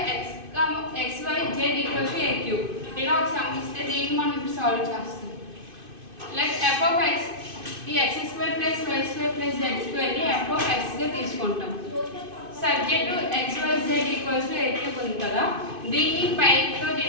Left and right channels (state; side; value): late; left; 2.5 ms